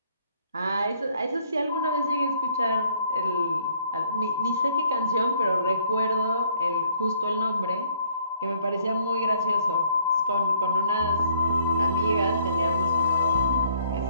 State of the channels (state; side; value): inverted; both; correlation -0.63